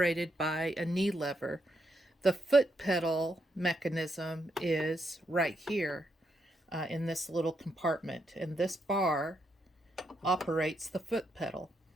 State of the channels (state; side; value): normal; both; correlation 0.79